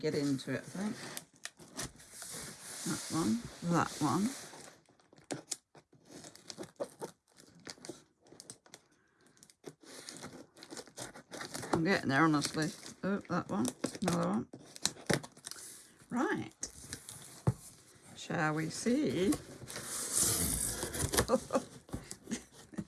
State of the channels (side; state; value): both; identical; correlation 1.00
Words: into it, I think. That one, that one. I'm getting there, honestly. Oh, that one, another one. Right. Shall we see?